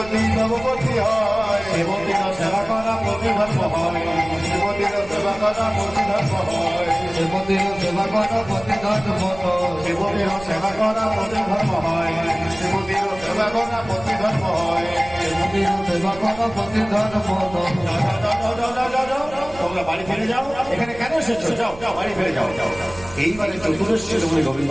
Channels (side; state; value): right; noise; rumble, 18 dB below the sound